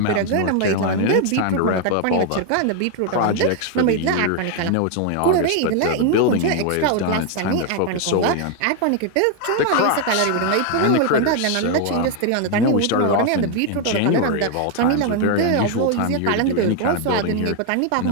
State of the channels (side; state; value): both; different; correlation 0.01